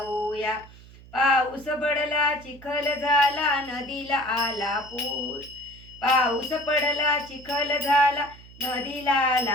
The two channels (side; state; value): right; noise; hum, 21 dB below the sound